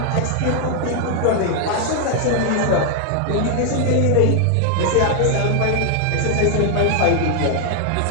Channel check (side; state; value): both; different; correlation 0.00